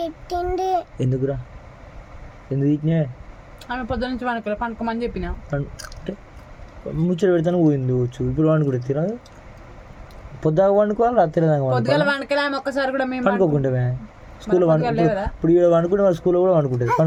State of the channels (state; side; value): identical; both; correlation 1.00